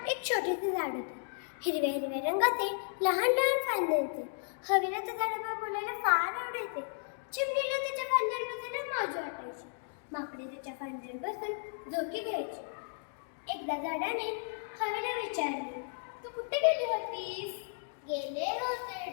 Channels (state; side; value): silent; right; digital silence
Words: एक छोटेसे झाड होते. हिरव्या हिरव्या रंगाचे लहान लहान फांदे होते. हवेला त्या झाडावर बोलायला फार आवडायचे. चिमणीला त्याच्या फांद्यावर बसायला मजा वाटायची. माकडे त्याच्या फांद्यावर बसून झोके घ्यायचे. एकदा झाडाने हवेला विचारले, तू कुठे गेली होतीस? गेले होते